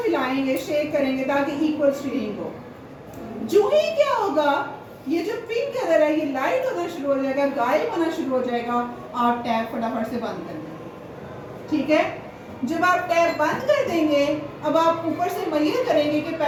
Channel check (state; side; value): identical; both; correlation 1.00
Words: हिलाएंगे शेक करेंगे ताकि इक्वल शेडिंग हो जो ही क्या होगा ये जो पिंक कलर है ये लाइट होना शुरू हो जाएगा गायब होना शुरू हो जाएगा आप टैप फटाफट से बंद कर देंगे। ठीक है जब आप टैप बंद कर देंगे अब आप ऊपर से मेजर करेंगे कि